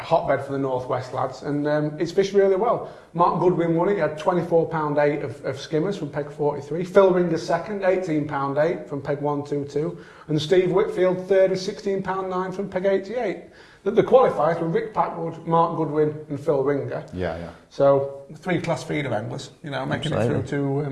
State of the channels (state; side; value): identical; both; correlation 1.00